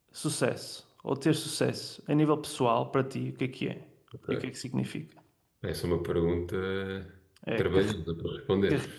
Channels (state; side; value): identical; both; correlation 1.00